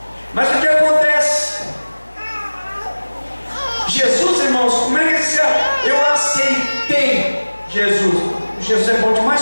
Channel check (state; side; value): inverted; both; correlation -1.00